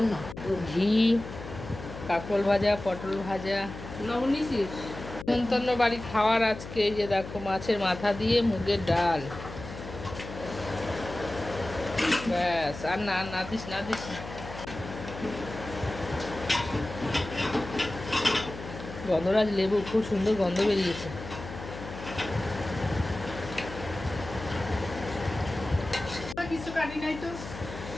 ঘি, কাঁকরোল ভাজা, পটল ভাজা, নিমন্ত্রণ বাড়ি খাওয়ার আজকে। এই যে দেখো মাছের মাথা দিয়ে মুগের ডাল, ব্যাস। আর না না দিস না দিস না। গন্ধরাজ লেবু, খুব সুন্দর গন্ধ বেরিয়েছে।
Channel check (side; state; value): left; noise; hum, 11 dB below the sound